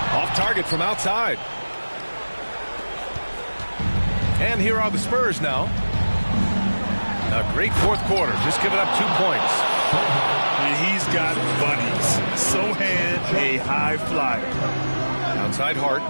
Off target from outside. And here are the Spurs now. A great fourth quarter, just giving up 2 points. And he's got bunnies. Sohan, a high flyer. Outside Hart.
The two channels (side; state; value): both; inverted; correlation -1.00